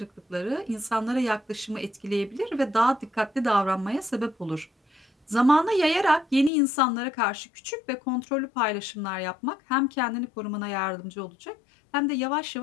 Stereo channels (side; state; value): right; drops out; at 6.5 s